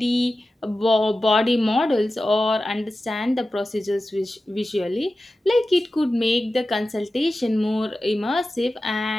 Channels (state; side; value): normal; both; correlation 0.94